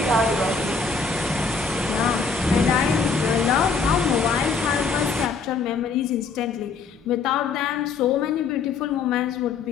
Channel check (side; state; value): right; quieter; 4.8 dB